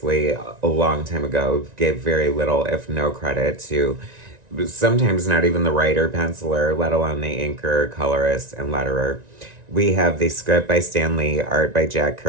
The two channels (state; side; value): late; left; 1.9 ms